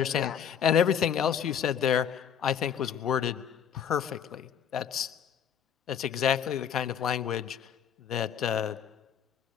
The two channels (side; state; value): right; quieter; 8.4 dB